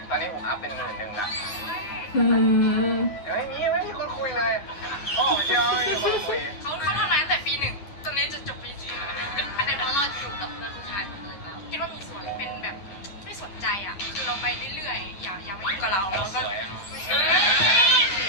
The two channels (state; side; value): late; right; 10 ms